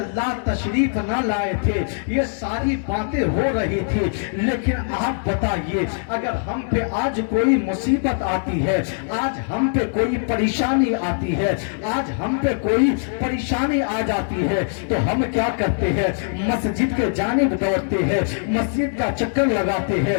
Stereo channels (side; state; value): right; silent; 64 dB below the other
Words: तशरीफ ना लाए थे ये सारी बातें हो रही थी। लेकिन आप बताइए अगर हम पे आज कोई मुसीबत आती है, आज हम पे कोई परेशानी आती है, आज हम पे कोई परेशानी आ जाती है तो हम क्या करते हैं? मस्जिद के जानिब दौड़ते हैं, मस्जिद का चक्कर लगाते हैं,